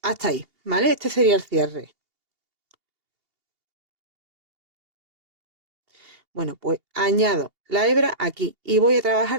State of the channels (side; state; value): left; late; 2.8 ms